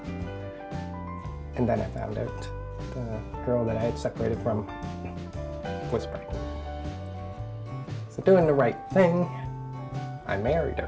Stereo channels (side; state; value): both; identical; correlation 1.00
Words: And then I found out the girl that I had separated from was pregnant. So doing the right thing, I married